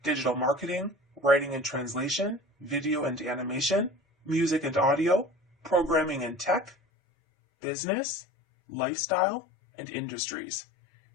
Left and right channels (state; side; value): drops out; right; at 6.8 s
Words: digital marketing, writing and translation, video and animation, music and audio, programming and tech, business, lifestyle, and industries.